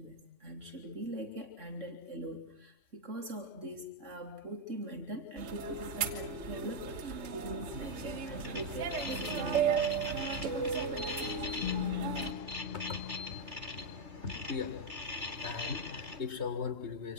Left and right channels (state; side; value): late; left; 3.7 ms